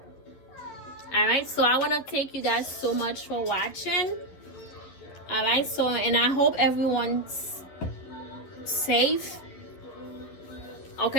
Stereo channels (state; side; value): late; right; 11 ms